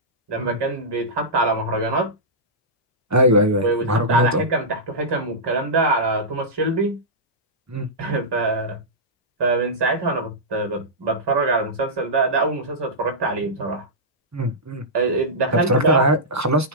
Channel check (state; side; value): normal; both; correlation -0.13